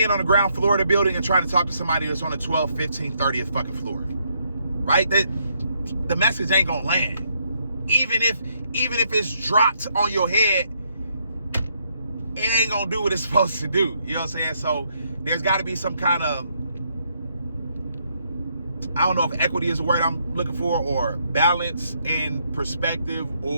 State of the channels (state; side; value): inverted; both; correlation -0.74